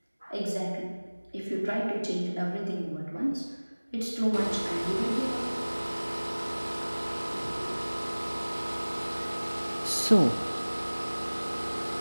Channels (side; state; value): both; inverted; correlation -1.00